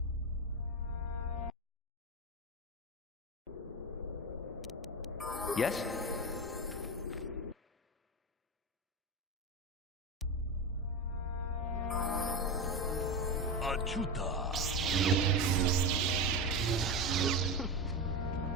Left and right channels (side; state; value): both; normal; correlation 0.18